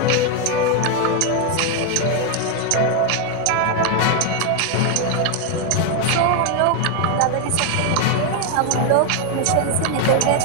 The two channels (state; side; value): different; both; correlation 0.01